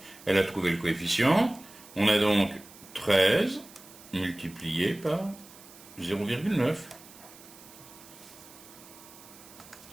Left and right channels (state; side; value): noise; right; hiss, 20 dB below the sound